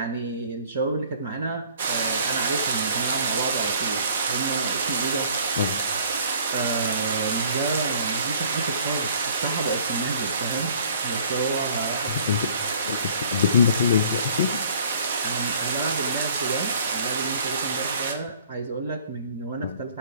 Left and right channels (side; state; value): both; inverted; correlation -0.54